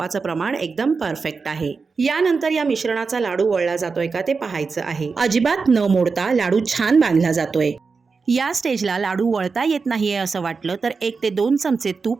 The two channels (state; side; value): quieter; left; 4.8 dB